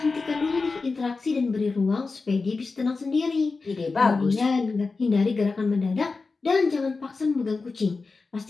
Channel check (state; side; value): quieter; right; 4.1 dB